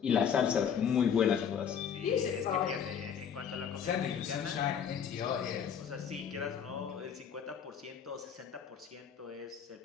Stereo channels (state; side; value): quieter; right; 7.7 dB